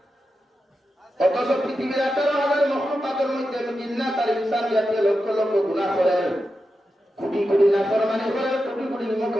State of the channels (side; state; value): both; normal; correlation 0.89